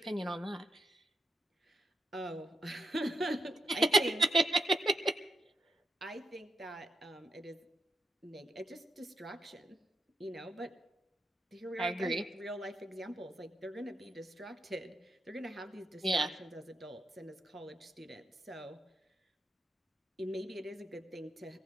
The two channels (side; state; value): both; normal; correlation 0.83